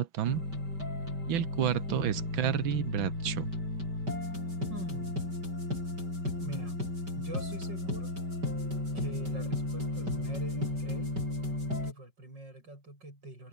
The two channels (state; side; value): late; left; 5.2 ms